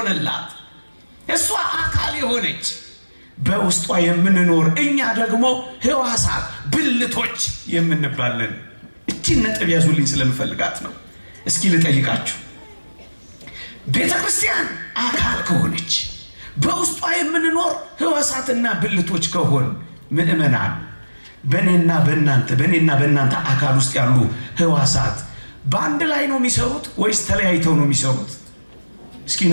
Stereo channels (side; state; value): both; inverted; correlation -1.00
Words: እሷ አካል የሆነች በውስጧ የምንኖር እኛ ደግሞ ሕዋሳት ብልቶች የምንባለን። እቺን ነጥብ ያዙልኝ ስለምፈልጋት ነው። እስኪ ልጠይቃችሁ፣ ቤተ ክርስቲያን አካል ከሆነች በውስጧ የምንኖር ሕዋሳትና ብልቶች ከሆን ምእመናን በእኔና በእናንተ አካል ውስጥ ያሉ ሕዋሳት በአንድ ላይ ነው የሚሰሩት ወይስ ተለያይተው ነው የሚሰሩት? እስኪ